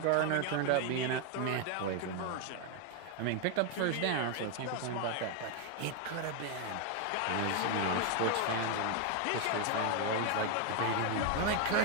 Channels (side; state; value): both; different; correlation 0.01